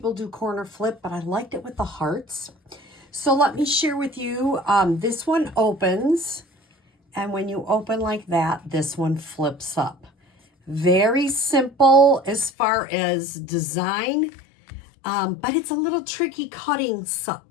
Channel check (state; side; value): drops out; right; at 12.5 s